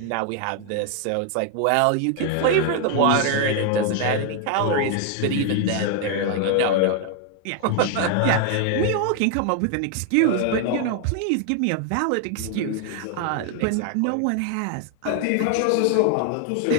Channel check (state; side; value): different; both; correlation 0.01